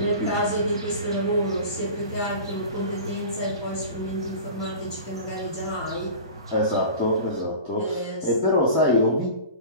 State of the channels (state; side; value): late; right; 1.2 ms